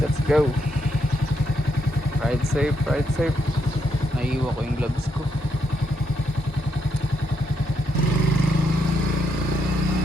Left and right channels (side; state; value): both; normal; correlation 0.78